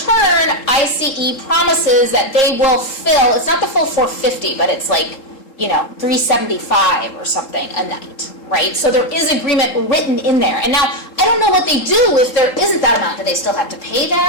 ICE promises that they will fill, it's not the full 450, but it's like, 375 or something a night, right? So there is agreement written in there. And now, I don't know what they do if there isn't that amount. Do they still have to pay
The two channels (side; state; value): right; late; 3.7 ms